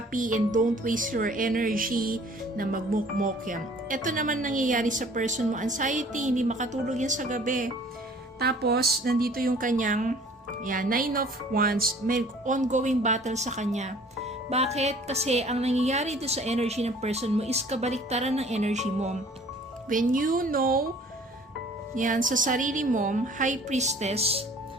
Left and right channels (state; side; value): normal; both; correlation 0.52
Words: and don't waste your energy na magmukmok yan. Ito naman nangyayari sa person mo. Anxiety, hindi makatulog yan sa gabi. Tapos, nandito yung kanyang, Nine of Wands, may ongoing battle sa kanya. Bakit? Kasi ang nangyayari dito sa energy ng person mo is kabaliktaran ng energy mo. When you know, sa sarili mo, High Priestess,